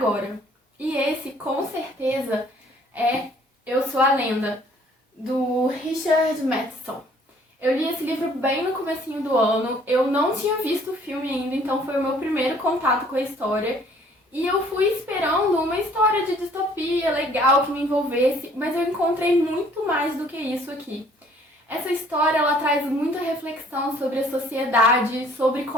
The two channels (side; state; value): both; normal; correlation 0.58